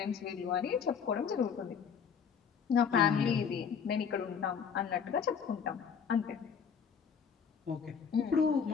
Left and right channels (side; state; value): right; quieter; 6.8 dB